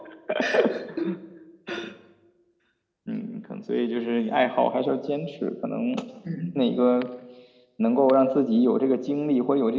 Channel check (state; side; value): identical; both; correlation 1.00